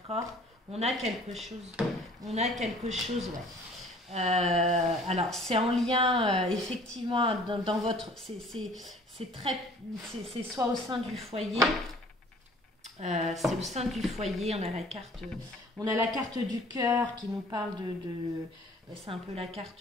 On a quelque chose, ouais. Alors c'est en lien effectivement dans votre, c'est soit au sein du foyer, c'est au sein du foyer. On a la carte du cœur qui nous parle c'est un peu la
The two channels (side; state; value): both; normal; correlation 0.52